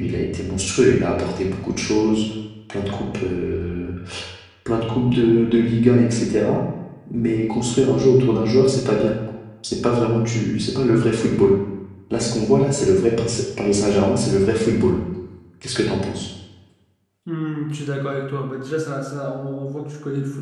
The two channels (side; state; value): both; identical; correlation 1.00